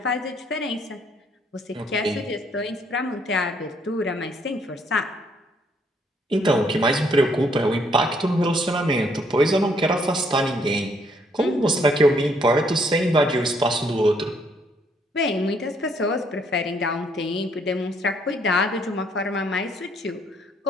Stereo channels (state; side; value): normal; both; correlation 0.68